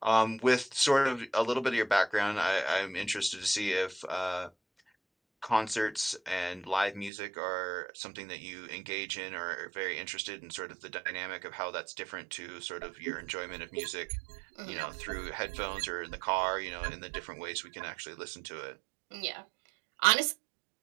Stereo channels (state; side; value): drops out; left; at 7.1 s